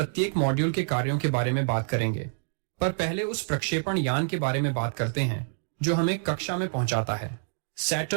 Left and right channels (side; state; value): left; silent; digital silence